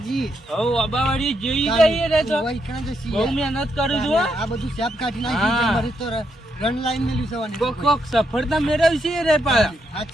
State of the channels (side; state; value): both; normal; correlation 0.79